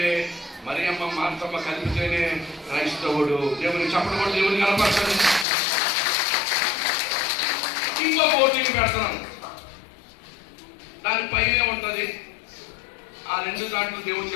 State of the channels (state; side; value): drops out; right; at 5.5 s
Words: మరియమ్మ మార్తమ్మ కలిపితేనే క్రైస్తవుడు. దేవుని చెప్పడం కూడా దేవుని కనపరచండి. ఇంకో ఓటింగ్ పెడతాను, దాని పైనే ఉంటది. ఆ రెండు దాంట్లో దేవుడు